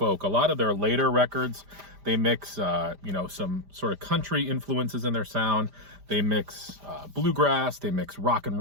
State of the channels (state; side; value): late; left; 5.0 ms